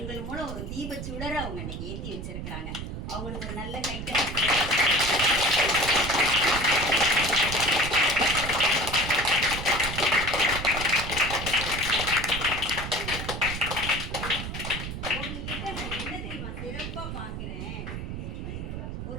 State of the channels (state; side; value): noise; right; rumble, 6 dB below the sound